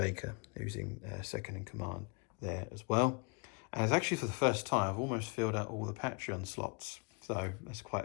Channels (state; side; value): quieter; right; 33.1 dB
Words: who's in second in command there as well. And it's actually for the first time, I've almost filled out all the Patreon slots. So that's